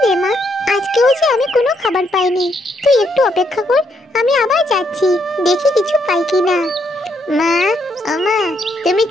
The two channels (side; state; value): both; normal; correlation 0.75